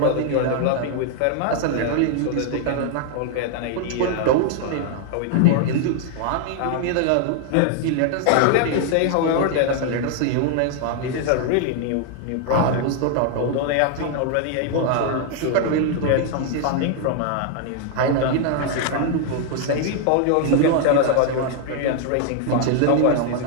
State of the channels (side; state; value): both; different; correlation 0.00